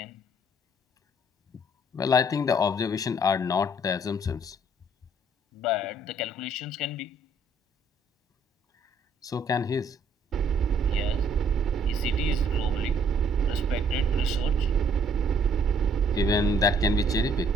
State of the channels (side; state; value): both; normal; correlation 0.64